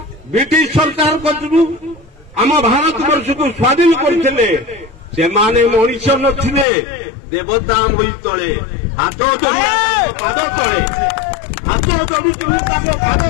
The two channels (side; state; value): right; drops out; at 6.7 s